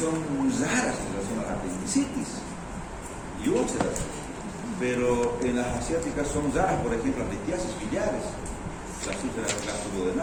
raras en relación a la apendicitis y úlceras, pero en las asiáticas son raras, por ejemplo, las litiasis biliares, las úlceras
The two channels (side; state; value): both; identical; correlation 1.00